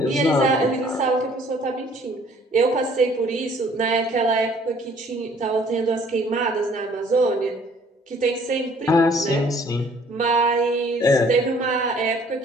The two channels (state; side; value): normal; both; correlation 0.57